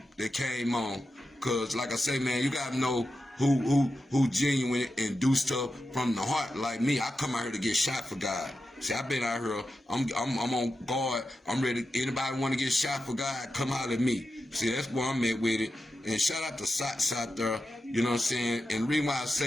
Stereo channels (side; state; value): both; normal; correlation 0.90